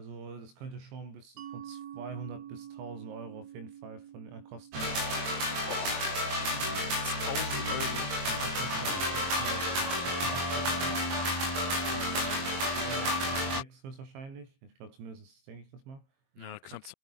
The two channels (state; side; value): late; left; 22 ms